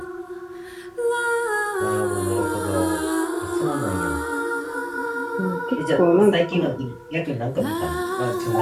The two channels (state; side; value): identical; both; correlation 1.00